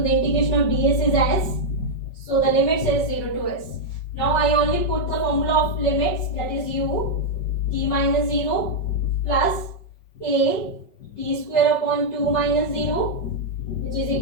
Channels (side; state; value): right; late; 5.3 ms